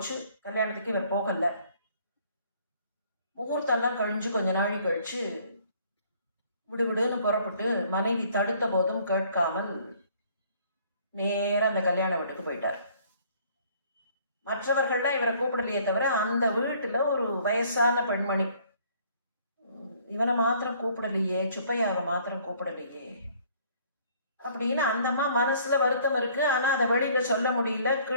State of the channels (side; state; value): both; inverted; correlation -0.59